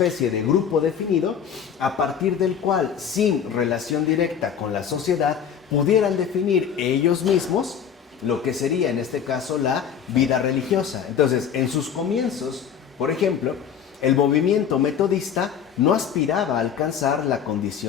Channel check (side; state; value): right; quieter; 8.0 dB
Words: de grupo definido a partir del cual, sin relación directa con la sociedad, pudieran definir ellos mismos lo que sería en este caso la vida religiosa. Entonces, en sus comienzos, por ejemplo, el movimiento metodista no aspiraba a alcanzar la